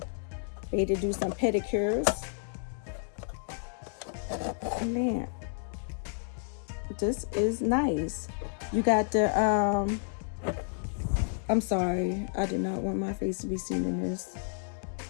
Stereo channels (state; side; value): silent; right; digital silence